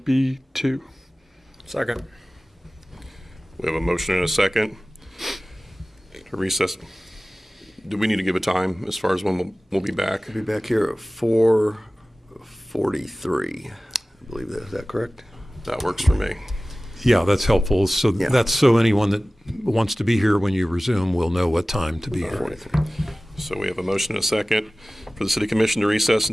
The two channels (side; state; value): both; normal; correlation 0.97